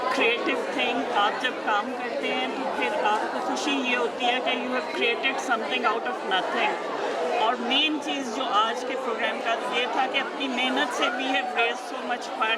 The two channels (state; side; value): identical; both; correlation 1.00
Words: creative thing. आप जब काम करते हैं तो फिर आपको खुशी ये होती है कि you have created something out of nothing. और मेन चीज़ जो आज के प्रोग्राम का ये था कि अपनी मेहनत से we have raise so much